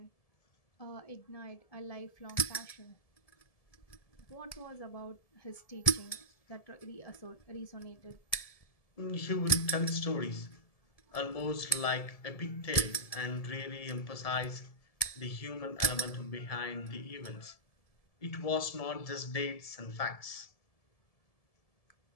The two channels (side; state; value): right; late; 1.7 ms